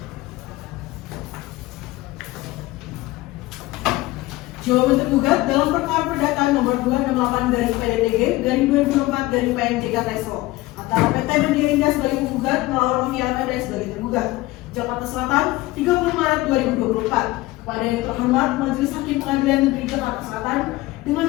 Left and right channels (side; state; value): right; quieter; 18.8 dB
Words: Jawaban tergugat dalam perkara perdata nomor 268/PDTG/2024/PNJKTSL antara PT Media Indah sebagai penggugat melawan Novia Amanda sebagai tergugat. Jakarta Selatan, 30 Maret 2024. Kepada yang terhormat Majelis Hakim Pengadilan Negeri Jakarta Selatan, dengan